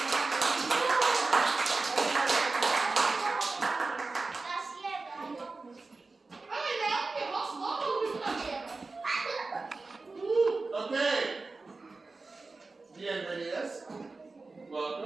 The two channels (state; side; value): quieter; left; 3.7 dB